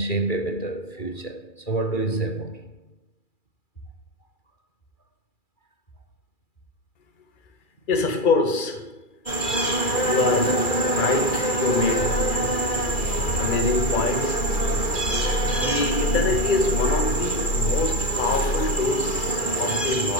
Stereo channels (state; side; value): late; right; 2.3 ms